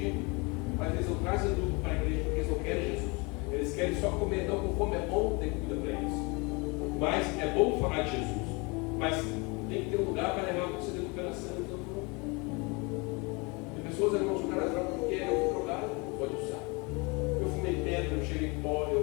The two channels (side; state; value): right; quieter; 28.5 dB